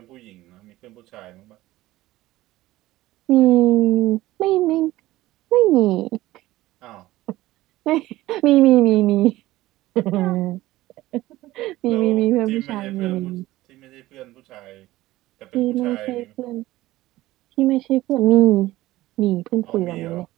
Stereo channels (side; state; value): left; quieter; 16.9 dB